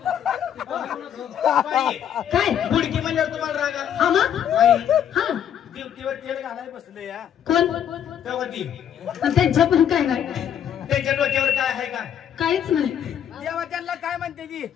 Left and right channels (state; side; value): quieter; right; 9.4 dB